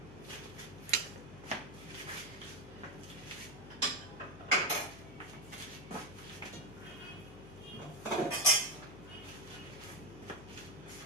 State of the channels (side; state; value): left; noise; hum, 16 dB below the sound